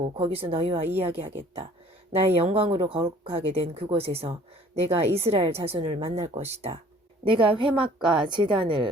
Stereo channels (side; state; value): both; normal; correlation 0.53